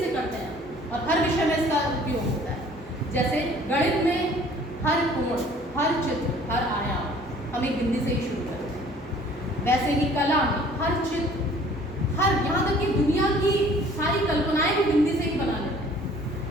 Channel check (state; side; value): normal; both; correlation 0.53